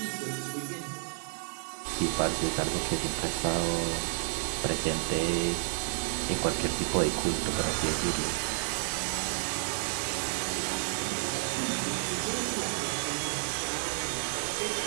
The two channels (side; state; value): left; silent; 57 dB below the other